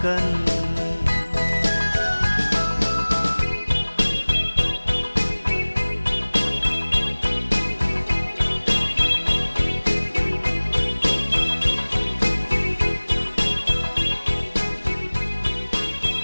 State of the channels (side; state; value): both; inverted; correlation -1.00